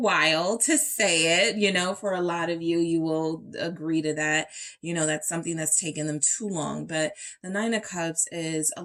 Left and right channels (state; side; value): identical; both; correlation 1.00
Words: to say it, for a lot of you, you will agree to that. That's something that's taken them too long. But the Nine of Cups is a